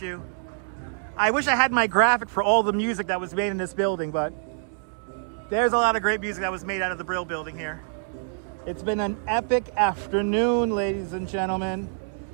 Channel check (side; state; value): left; silent; digital silence